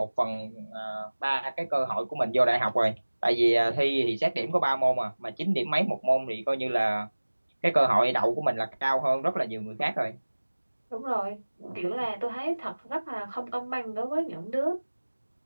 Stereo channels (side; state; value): both; inverted; correlation -1.00